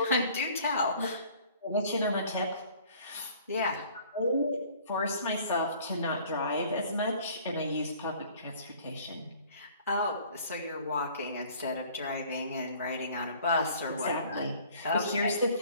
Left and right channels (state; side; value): inverted; both; correlation -0.53